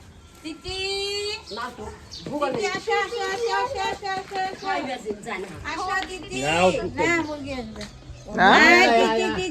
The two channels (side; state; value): both; identical; correlation 1.00